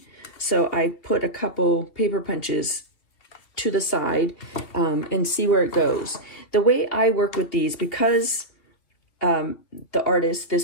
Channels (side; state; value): right; late; 2.7 ms